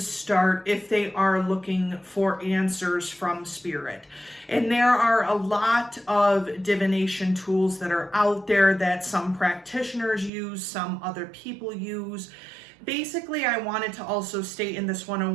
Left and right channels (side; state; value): left; drops out; at 10.3 s